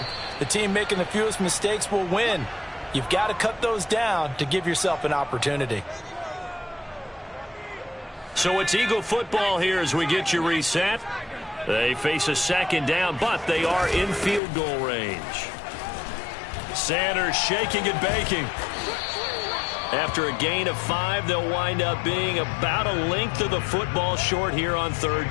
the team making the fewest mistakes will win. You've got to cut those down to give yourself an opportunity. So it's Eagle football here as we get you reset. They face a 2nd down, but they are in field goal range. Sanders shaking and baking. After a gain of 5, they'll wind up being about a length of the football short here on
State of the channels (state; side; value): drops out; right; at 14.4 s